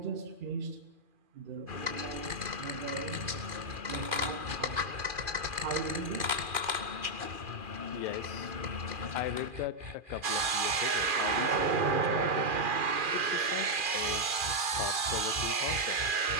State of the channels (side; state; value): left; late; 2.4 ms